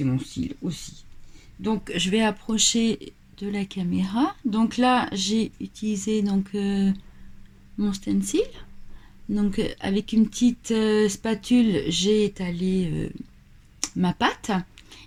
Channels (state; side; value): identical; both; correlation 1.00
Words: mon style aussi. Donc je vais approcher de la caméra. Donc là, j'ai utilisé donc mon stencil. Donc avec une petite spatule, j'ai étalé ma pâte